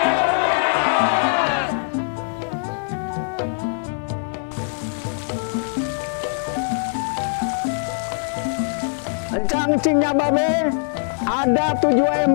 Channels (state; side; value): silent; right; 64 dB below the other